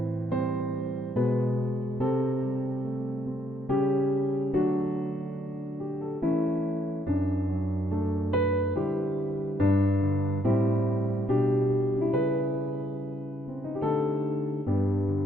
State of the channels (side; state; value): both; normal; correlation 0.73